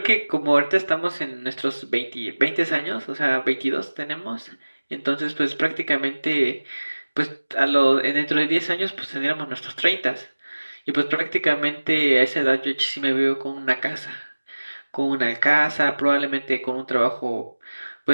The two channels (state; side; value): inverted; both; correlation -1.00